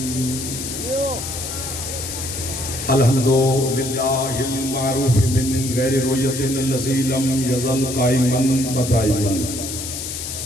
अल्हम्दुलिल्लाहिल मारूफ मिन गैरि रुयतिन लज़ी lump यज़ल caiman व दाइमन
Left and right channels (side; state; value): left; noise; hiss, 6 dB below the sound